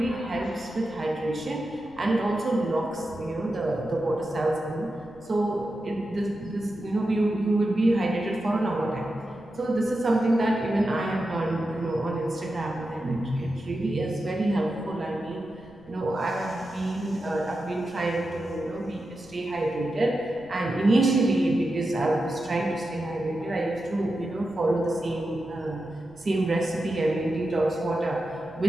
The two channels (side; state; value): right; noise; rumble, 27 dB below the sound